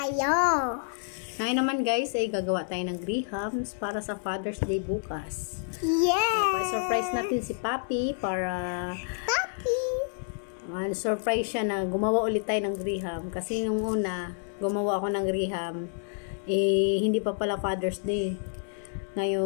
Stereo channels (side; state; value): right; silent; digital silence